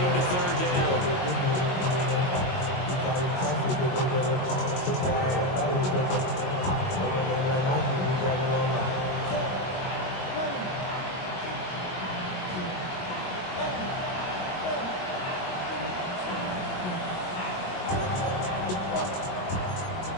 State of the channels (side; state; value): right; late; 22 ms